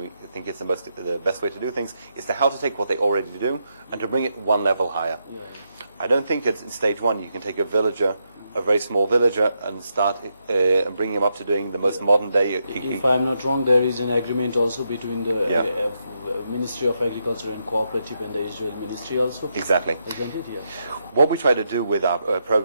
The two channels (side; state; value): both; inverted; correlation -0.82